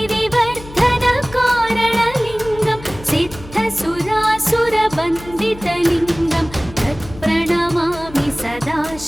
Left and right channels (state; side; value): noise; left; hum, 16 dB below the sound